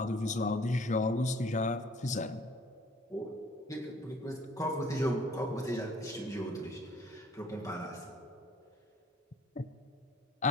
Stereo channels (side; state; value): both; normal; correlation 0.56